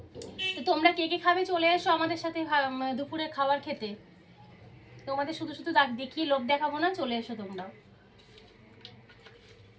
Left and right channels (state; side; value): identical; both; correlation 1.00